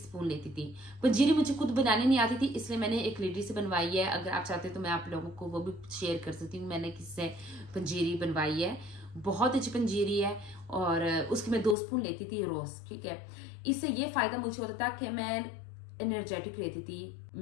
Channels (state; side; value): drops out; right; at 11.8 s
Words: लेती थी। पंजीरी मुझे खुद बनाने नहीं आती थी, इसलिए मैंने एक लेडी से बनवाई है। अगर आप चाहते हैं तो मैं आप लोगों को वो भी शेयर कर सकती हूँ, मैंने किससे पंजीरी बनवाई है, बहुत अच्छी पंजीरी है। और उसकी मैं 2 स्पून लेती थी रोज, ठीक है। इससे ये फायदा मुझे होता था कि मैं एनर्जेटिक रहती थी,